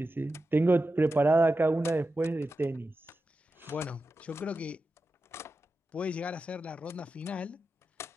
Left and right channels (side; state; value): both; normal; correlation 0.91